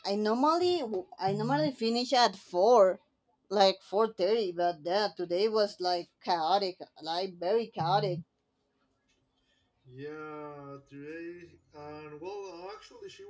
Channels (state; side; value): identical; both; correlation 1.00